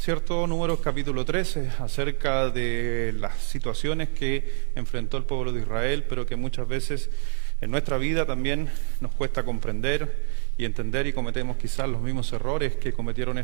Números capítulo 13, acerca de las situaciones que enfrentó el pueblo de Israel, pero que muchas veces en nuestra vida también nos cuesta comprender y entender, y cometemos quizás los mismos errores que cometieron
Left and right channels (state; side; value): silent; left; 58 dB below the other